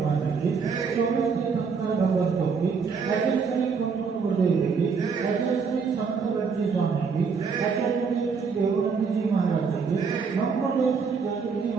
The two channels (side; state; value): left; quieter; 5.5 dB